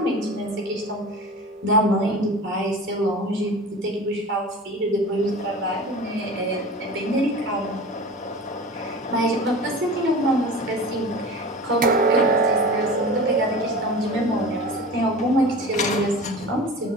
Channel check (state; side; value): normal; both; correlation 0.35